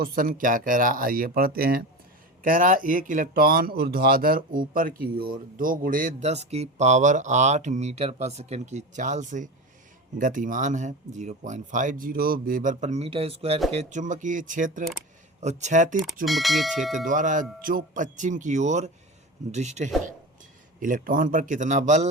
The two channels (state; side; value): normal; both; correlation 0.26